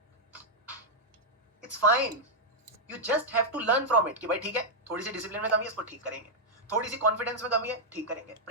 It's fine. You just have to learn from it कि भाई ठीक है, थोड़ी सी डिसिप्लिन में कमी है, इसको ठीक करेंगे। थोड़ी सी कॉन्फिडेंस में कमी है, ठीक करेंगे।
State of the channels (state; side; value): normal; both; correlation -0.05